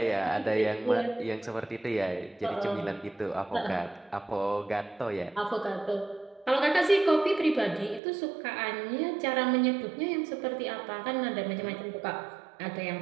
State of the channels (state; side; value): drops out; left; at 8.0 s